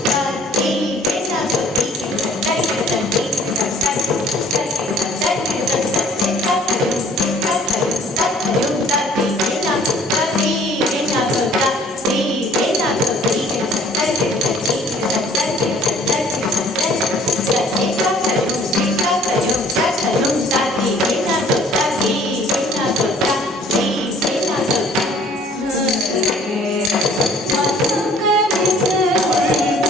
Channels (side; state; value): both; normal; correlation 0.55